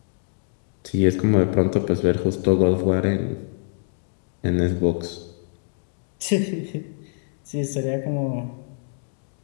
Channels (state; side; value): silent; right; digital silence